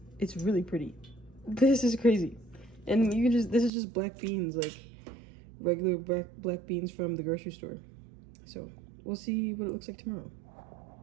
it's really pretty. This is crazy. And you can just, this is just black beans, like regular black beans from the grocery store. So we'll see what it looks like tomorrow.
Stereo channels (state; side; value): drops out; left; at 3.7 s